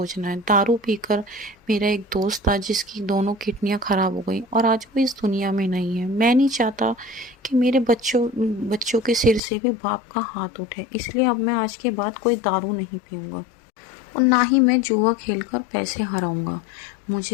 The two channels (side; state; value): right; drops out; at 9.4 s